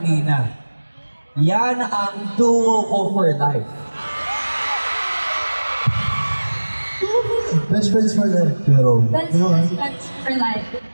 Yan ang duo ko for life. Best friends for life. Pero, Best friends for life.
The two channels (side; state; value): both; inverted; correlation -1.00